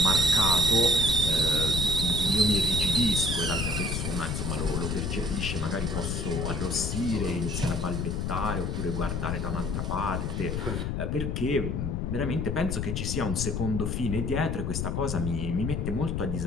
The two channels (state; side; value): noise; left; rumble, 1 dB below the sound